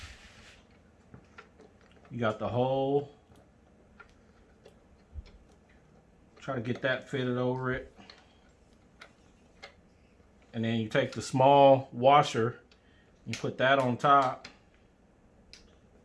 You got the hole. Try to get that fitted over it. And then you take the small washer, you put that on top.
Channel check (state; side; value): identical; both; correlation 1.00